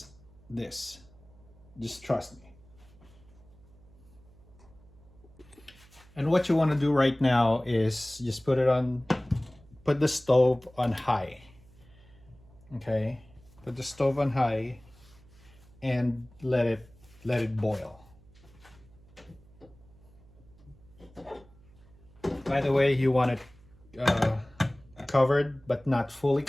this. Just trust me. And what you want to do right now is just put the stove on high. Okay? Put the stove on high and let it boil. By the way, you want it covered but not fully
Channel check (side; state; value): right; noise; hum, 25 dB below the sound